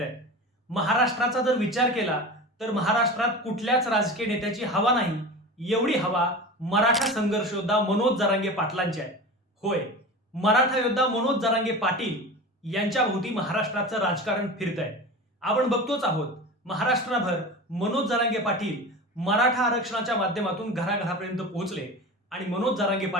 महाराष्ट्राचा जर विचार केला तर महाराष्ट्रात कुठल्याच राजकीय नेत्याची हवा नाही, एवढी हवा मराठा संघर्ष योद्धा मनोज जरांगे पाटलांची आहे. होय, मराठा योद्धा मनोज जरांगे पाटील यांच्या भोवती महाराष्ट्राचं राजकारण फिरतंय. आपण बघतोच आहोत, महाराष्ट्रभर मनोज जरांगे पाटील मराठा आरक्षणाच्या माध्यमातून घराघरापर्यंत पोहोचले आणि मनोज जरांगे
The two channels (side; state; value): both; normal; correlation 0.31